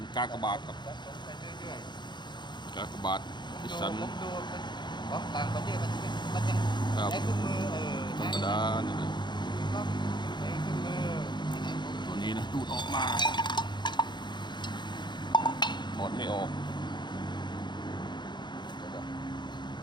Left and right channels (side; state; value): right; late; 0.22 ms